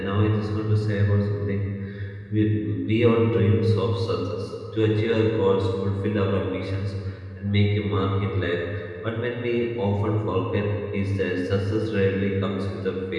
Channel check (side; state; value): both; identical; correlation 1.00